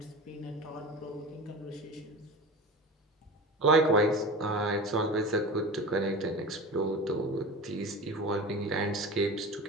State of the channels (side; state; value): both; normal; correlation 0.31